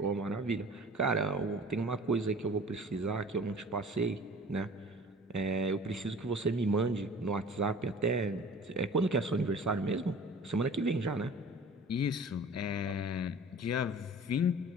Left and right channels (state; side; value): normal; both; correlation 0.44